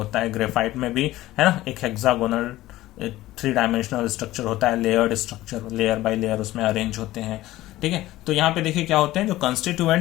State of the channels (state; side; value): quieter; right; 16.3 dB